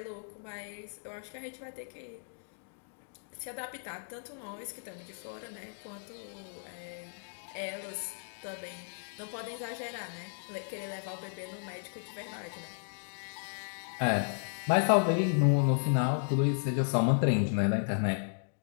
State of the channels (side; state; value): right; silent; digital silence